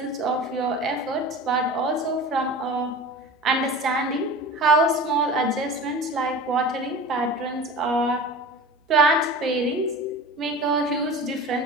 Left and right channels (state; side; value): normal; both; correlation 0.35